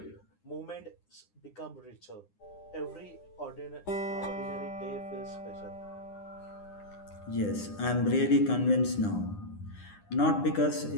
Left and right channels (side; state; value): right; late; 9.8 ms